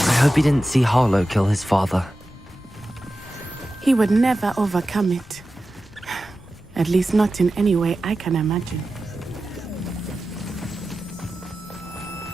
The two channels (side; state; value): both; normal; correlation 0.93